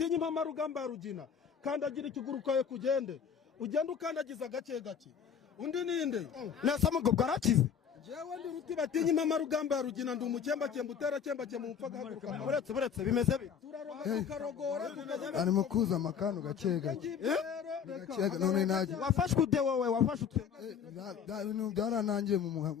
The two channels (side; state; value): right; quieter; 7.5 dB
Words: impama rugamba rugina kandagira ikiguru kawe kugende ugenda ukandagiza gake gake undi ninde nasa mugo bwarakize jewe ndi ruti batinya impama rugamba rugina ndi umukemba utera kemba mu mpfa gahaguruka buretse bimeze bite tukarogora arimo kuza amakano gake gake none naje wafashwe ude wowe wafashwe ibintu byaranangiye